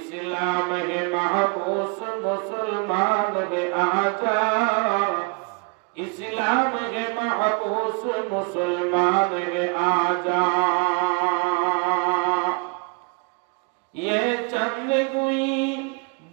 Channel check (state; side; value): quieter; left; 32.4 dB